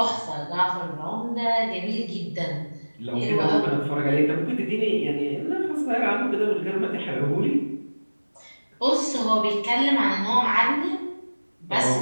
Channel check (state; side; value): inverted; both; correlation -1.00